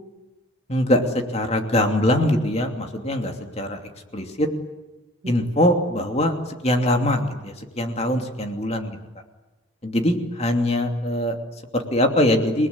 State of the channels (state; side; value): normal; both; correlation 0.48